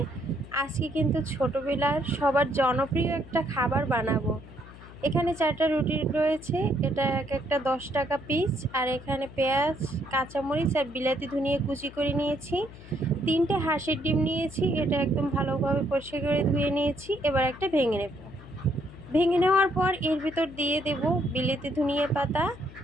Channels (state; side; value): noise; left; hum, 18 dB below the sound